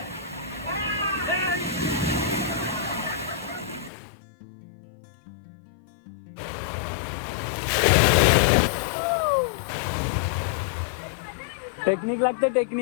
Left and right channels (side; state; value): right; drops out; at 3.9 s